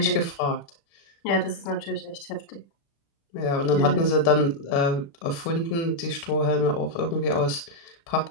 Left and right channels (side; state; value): right; late; 35 ms